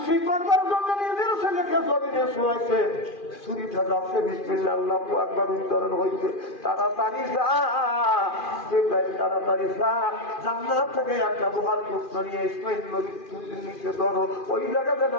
করবার জন্য নিজের ছেলেকে জমিনে শোয়াইছে, ছুরিটা যাচ্ছে, বিসমিল্লাহ আল্লাহু আকবার উচ্চারণ হইছে। তাড়াতাড়ি যা জিবরাইল, তাড়াতাড়ি যা, জান্নাত থেকে একটা লোহার টুকরো নিয়ে ইসমাঈল নবীর ছুরির নিচে ধরো, ওই জায়গাতে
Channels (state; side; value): late; right; 2.4 ms